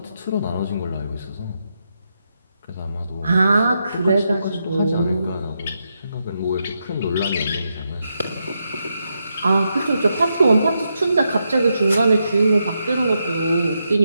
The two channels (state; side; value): inverted; both; correlation -0.84